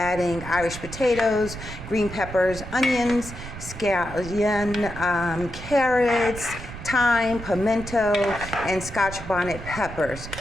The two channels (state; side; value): noise; right; rumble, 11 dB below the sound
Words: Irish potatoes, green peppers, onions, scallion, carrots, thyme, pimento, and Scotch bonnet peppers,